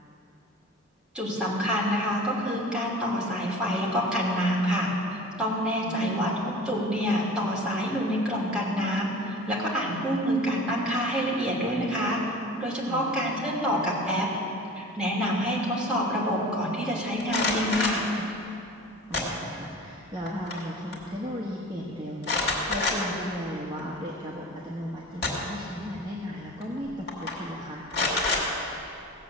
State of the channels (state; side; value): normal; both; correlation 0.39